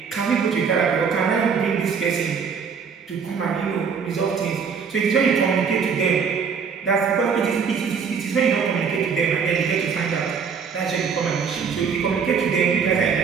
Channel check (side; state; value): left; quieter; 6.1 dB